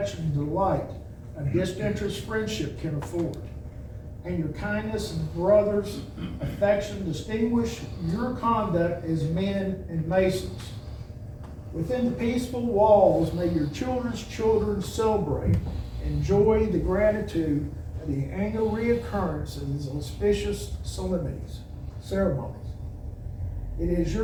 and delight a disinterested friendship can afford. And your kindness and brothers' affection distinguish your conduct as men and Masons. Within the peaceful walls, may your children's children celebrate, enjoy the gratitude of the annual reoccurrence of these auspicious ceremonies. It is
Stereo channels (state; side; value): identical; both; correlation 1.00